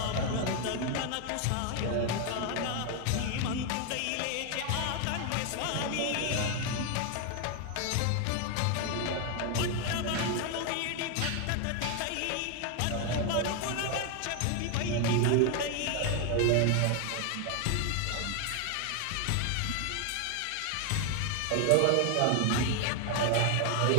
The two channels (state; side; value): different; both; correlation 0.01